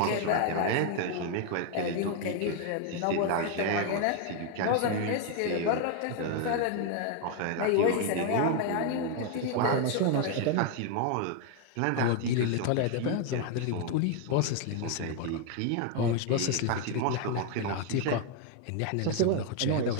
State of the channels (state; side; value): different; both; correlation 0.01